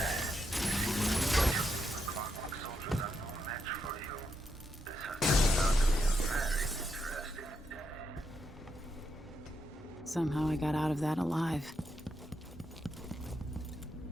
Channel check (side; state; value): both; normal; correlation 0.82